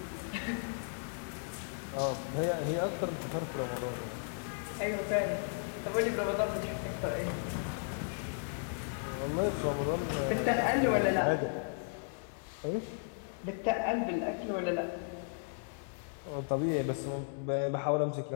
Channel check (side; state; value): right; silent; 54 dB below the other